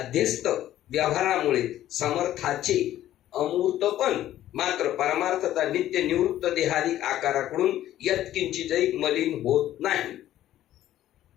व्यवहारामुळे समर्थाचे अमूर्तपण मात्र परमार्थता नित्य निवृत्त देहादिक आकाराकडून यत्किंचितही मलिन होत नाही.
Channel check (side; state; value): right; quieter; 13.0 dB